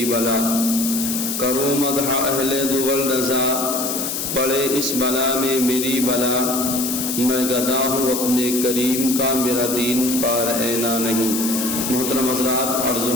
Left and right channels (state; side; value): noise; left; hiss, 3 dB below the sound